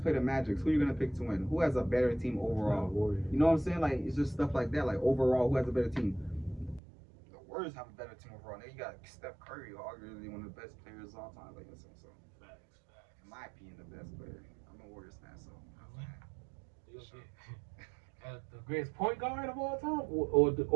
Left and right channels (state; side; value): drops out; left; at 6.8 s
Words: the Magic, who are you gonna pick to win? Who has a better team overall? You know what I'm saying? Like, it's just stuff like that. Like overall, who has a better team? The Warriors have a better team overall. Now you got Steph Curry, arguably one of the best players of all time. Like, so facts. In my opinion, the best player. I'm a Warriors fan, so. The greatest point guard of all time, or the